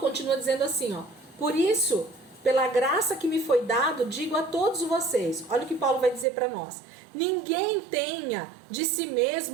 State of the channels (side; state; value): left; drops out; at 6.2 s